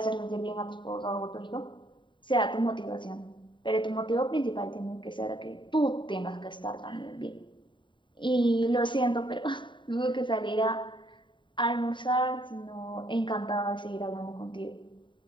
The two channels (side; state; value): right; late; 0.23 ms